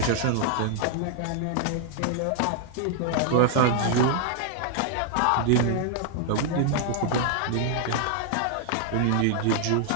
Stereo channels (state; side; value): different; both; correlation 0.00